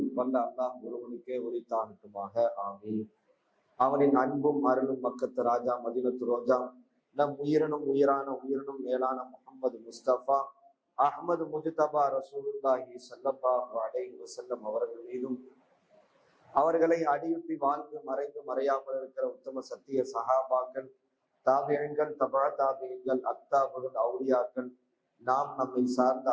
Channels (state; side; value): identical; both; correlation 1.00